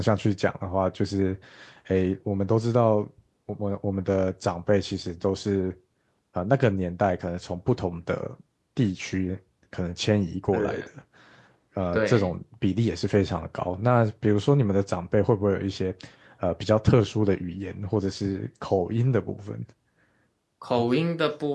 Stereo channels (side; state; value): both; identical; correlation 1.00